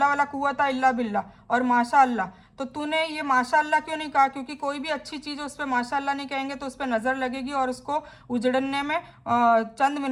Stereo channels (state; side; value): identical; both; correlation 1.00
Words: वाला कुव्वता इल्ला बिल्ला और माशाअल्लाह। तो तूने ये माशाअल्लाह क्यों नहीं कहा? क्योंकि कोई भी अच्छी चीज़ उस पर माशाअल्लाह नहीं कहेंगे तो उस पर नज़र लगेगी और उसको उजड़ने में चंद